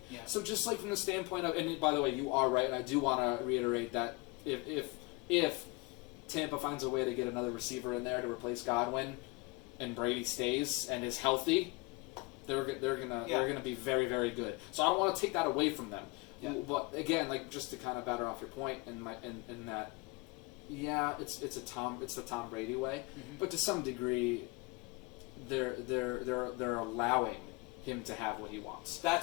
Yeah. So just like from the standpoint of, and by the way, you are right, and I do want to reiterate that if Tampa finds a way to get another receiver in there to replace Godwin, and Brady stays and is healthy, they're gonna be very, very good. So I don't want to take that away from them. Yeah. But again, like just to kind of batter off your point in that. Yeah, it's the Tom Brady way, but to some degree, they're allowing him to have what he wants.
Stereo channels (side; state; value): right; quieter; 25.2 dB